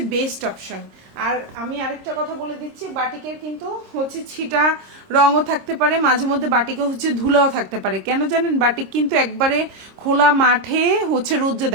বেস্ট অপশন। আর আমি আরেকটা কথা বলে দিচ্ছি, বাটিকের কিন্তু হচ্ছে ছিটা রঙও থাকতে পারে, মাঝে মধ্যে বাটিকে হচ্ছে ধুলাও থাকতে পারে। কেন জানেন, বাটিক কিন্তু একবারে খোলা মাঠে হচ্ছে রোদ্রে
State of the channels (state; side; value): late; left; 26 ms